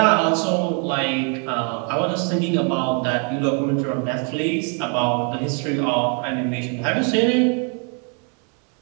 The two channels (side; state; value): left; quieter; 39.1 dB